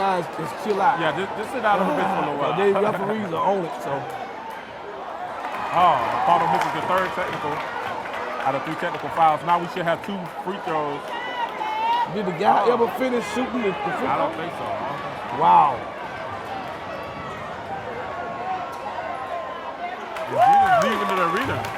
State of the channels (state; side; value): identical; both; correlation 1.00